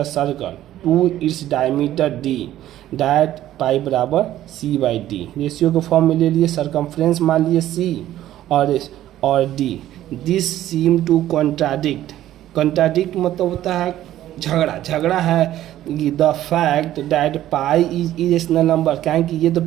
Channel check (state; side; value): quieter; left; 13.2 dB